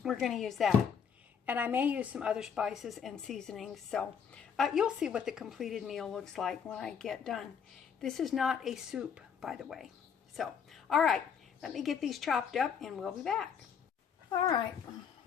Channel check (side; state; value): right; quieter; 7.1 dB